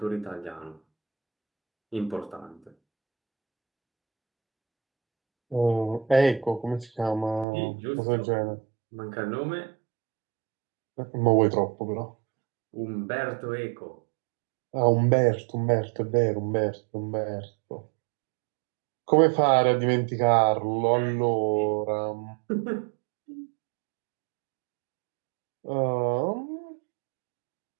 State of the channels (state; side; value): drops out; left; at 7.5 s